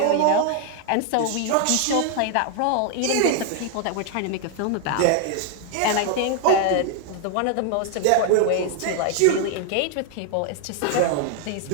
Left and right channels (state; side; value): different; both; correlation 0.00